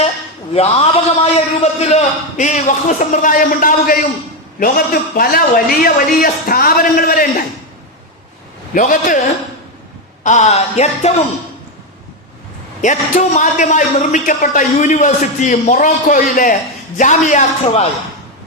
വ്യാപകമായ രൂപത്തിൽ ഈ വഖഫ് സമ്പ്രദായം ഉണ്ടാവുകയും ലോകത്ത് പല വലിയ വലിയ സ്ഥാപനങ്ങൾ വരെ ഉണ്ടായി. ലോകത്ത് ഏറ്റവും ആദ്യമായി നിർമ്മിക്കപ്പെട്ട യൂണിവേഴ്സിറ്റി മൊറോക്കോയിലെ ജാമിയ ഖവായ.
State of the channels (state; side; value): normal; both; correlation 0.08